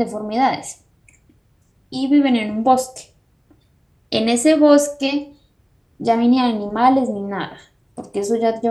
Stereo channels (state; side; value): identical; both; correlation 1.00